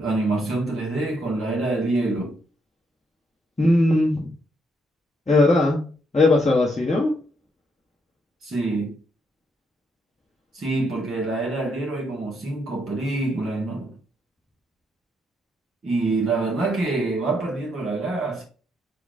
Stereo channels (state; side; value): normal; both; correlation 0.76